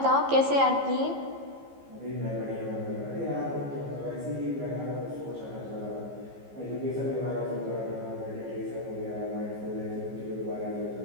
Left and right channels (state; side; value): late; left; 15 ms